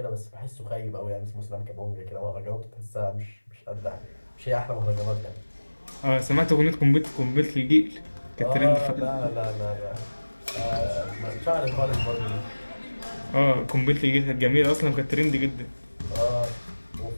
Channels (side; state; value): both; inverted; correlation -1.00